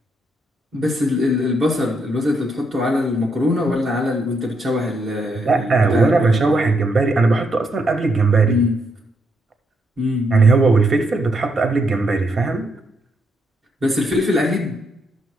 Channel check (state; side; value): normal; both; correlation 0.77